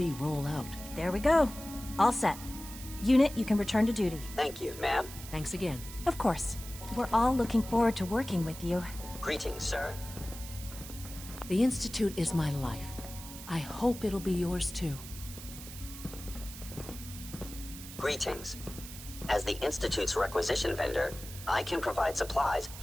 roll out. There we go. All set. Unit, you can return to duty. Thank you, ma'am. Thanks again. Of course. We're all looking forward to working with you. Greetings, sir. The Institute is my life. I hope it'll be yours too. Greetings. As the Institute's requisition vendor, I can provide supplies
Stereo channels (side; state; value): right; noise; hiss, 13 dB below the sound